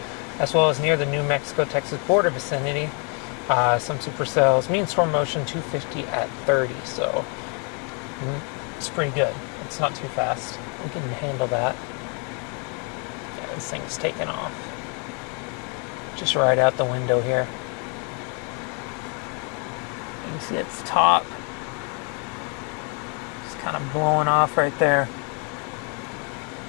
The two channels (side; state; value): right; quieter; 36.0 dB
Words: as well as near the New Mexico-Texas border vicinity. Some supercells. Mean storm motion 250 at 30, so it's pretty good. It's not too fast. We can handle that. Yeah, this thing's taking off. Just right out the window here. You can see its top. It's kind of blowing off right there.